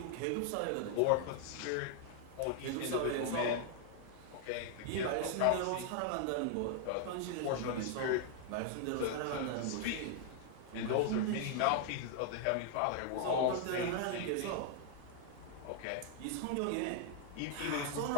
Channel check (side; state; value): both; different; correlation 0.00